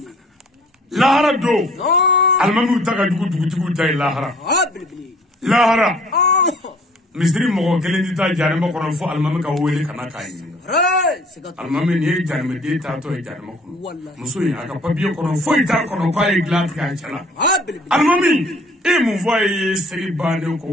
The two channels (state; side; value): normal; both; correlation 0.55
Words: lahara don alimamiw ta ka jugu dugutigiw ta ye lahara lahara misiri mɔgɔ kelen tɛ taa janɛma kɔnɔ fo alimami ka wele ka na k'a ɲininka alimami nin ye janɛmɛden taatɔ ye janɛma kɔnɔ muso in a ka papiye kɔnɔ foyi t'a kɔnɔ k'a ye dilan tigɛ a cɛ la alimami e mun fɔ a ye seli bannen k'o